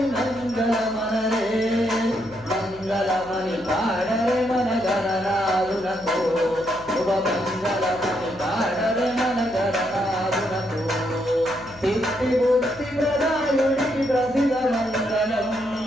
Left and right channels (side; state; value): left; noise; hum, 22 dB below the sound